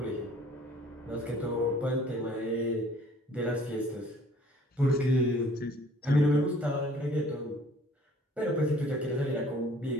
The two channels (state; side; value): normal; both; correlation 0.55